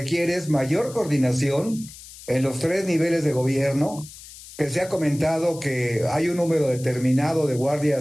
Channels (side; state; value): left; noise; hiss, 17 dB below the sound